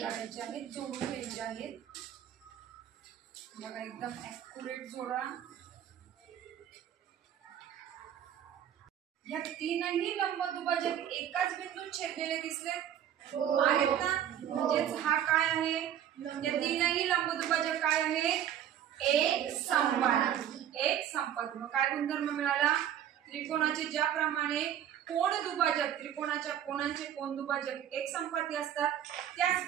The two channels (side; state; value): left; quieter; 10.3 dB